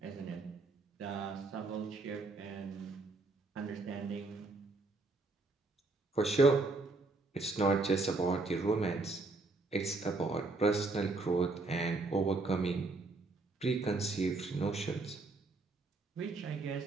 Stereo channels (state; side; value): quieter; left; 3.4 dB